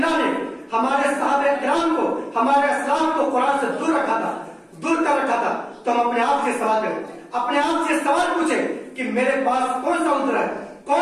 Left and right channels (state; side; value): identical; both; correlation 1.00